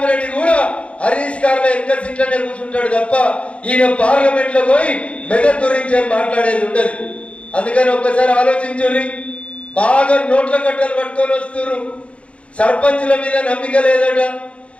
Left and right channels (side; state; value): right; late; 0.062 ms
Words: కూడా హరీష్ గారు ఎంత సీట్లనే కూర్చుంటాడు తప్ప ఈయన పార్లమెంట్ లో పోయి మెదక్ గురించి ఏం మాట్లాడేది ఉండదు. అందుకని ఒక్కసారి ఆలోచించుర్రి. బాగా నోట్ల కట్టలు పట్టుకొని వస్తున్నారు. సర్పంచుల మీద నమ్మిక లేదట,